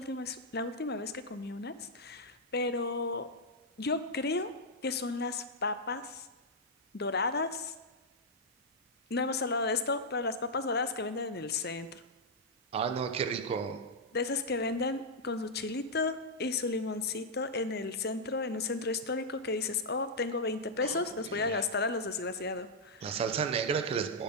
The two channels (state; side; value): normal; both; correlation -0.05